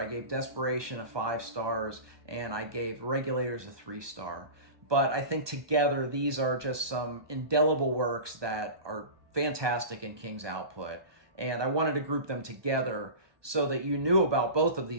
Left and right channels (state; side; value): late; left; 1.2 ms